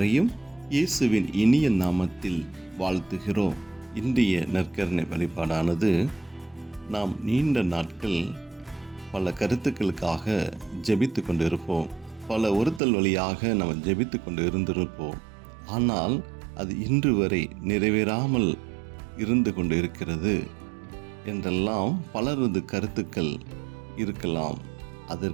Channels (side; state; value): left; drops out; at 12.8 s